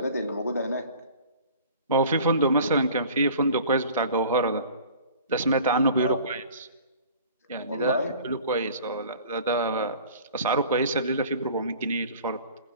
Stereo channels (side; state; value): both; inverted; correlation -0.46